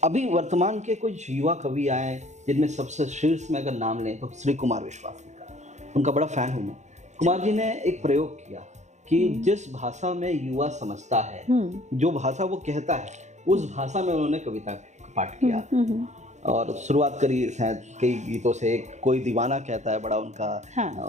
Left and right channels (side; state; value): left; late; 0.34 ms